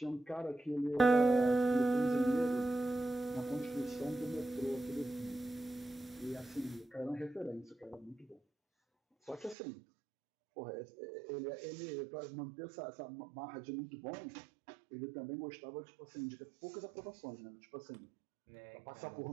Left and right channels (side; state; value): left; drops out; at 9.6 s